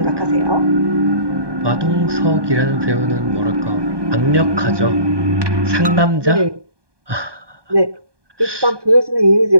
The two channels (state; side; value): late; left; 1.2 ms